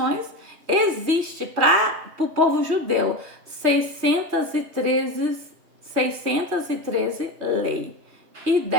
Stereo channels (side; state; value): left; late; 3.2 ms